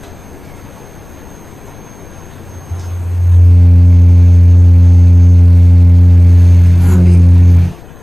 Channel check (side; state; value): left; noise; rumble, 24 dB below the sound